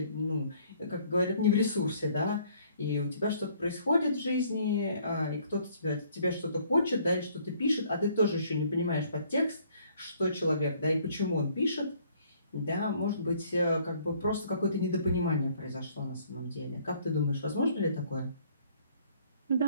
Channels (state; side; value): inverted; both; correlation -0.62